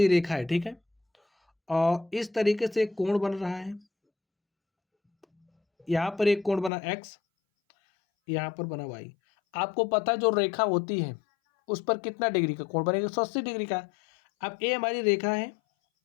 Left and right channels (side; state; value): right; drops out; at 6.7 s